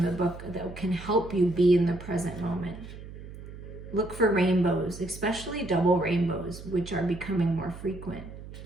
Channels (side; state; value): right; noise; hum, 13 dB below the sound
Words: the book that can help you be in the present moment. Look for rainbows, especially double rainbows, which are becoming more frequent.